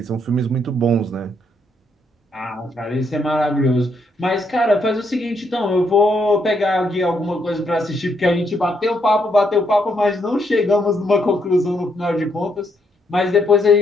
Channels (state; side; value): normal; both; correlation 0.75